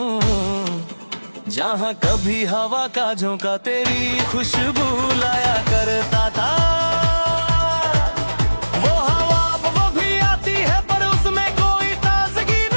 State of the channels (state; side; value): inverted; both; correlation -1.00